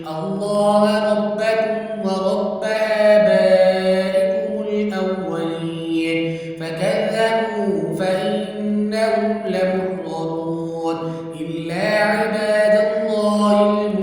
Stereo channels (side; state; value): both; identical; correlation 1.00